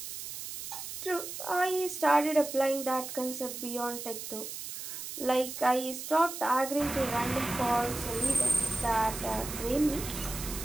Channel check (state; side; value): noise; right; hiss, 8 dB below the sound